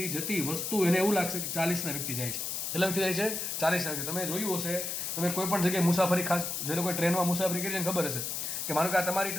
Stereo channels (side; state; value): left; noise; hiss, 3 dB below the sound